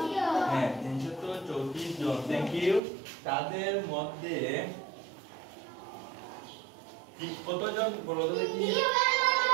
হ্যাঁ, 334 জন। Thank you. তাদের মধ্যে কতজন বলো তো দেখি?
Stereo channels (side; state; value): left; drops out; at 2.8 s